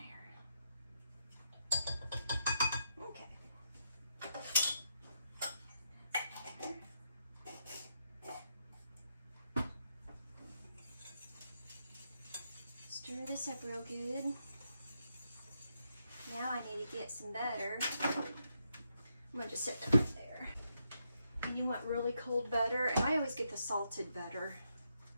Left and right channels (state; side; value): inverted; both; correlation -0.80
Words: there. Okay. Stir this up real good. Now I need to get some butter. I'm gonna just set that right there. And you want really cold butter, and I always get the salted butter.